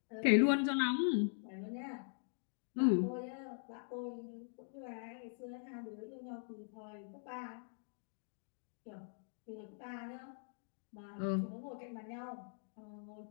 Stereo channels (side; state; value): right; silent; digital silence